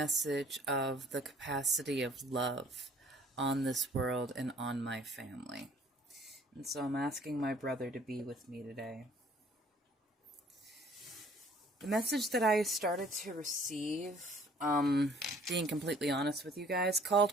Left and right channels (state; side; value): normal; both; correlation 0.56